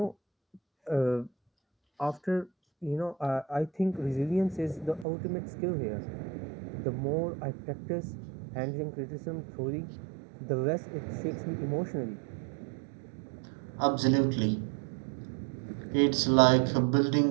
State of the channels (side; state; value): left; drops out; at 5.1 s